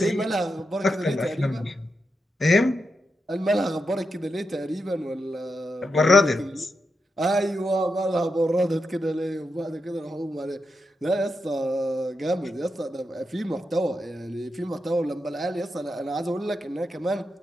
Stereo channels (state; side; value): normal; both; correlation 0.86